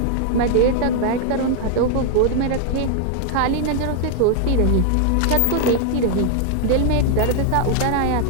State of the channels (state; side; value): different; both; correlation 0.00